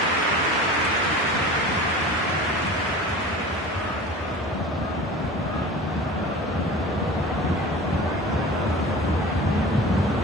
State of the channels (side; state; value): both; normal; correlation 0.37